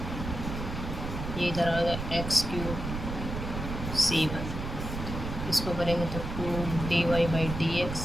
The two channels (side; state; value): right; noise; rumble, 6 dB below the sound